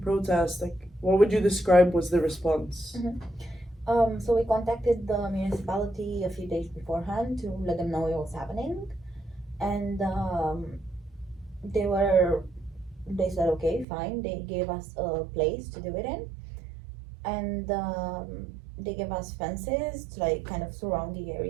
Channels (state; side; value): drops out; left; at 13.9 s